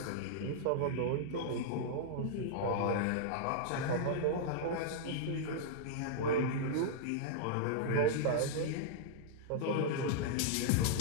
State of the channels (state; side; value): different; both; correlation -0.01